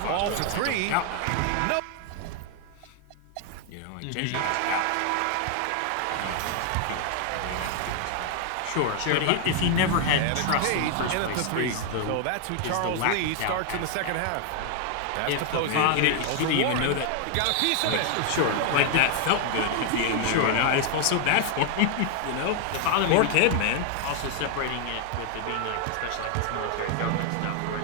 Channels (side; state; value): both; different; correlation 0.00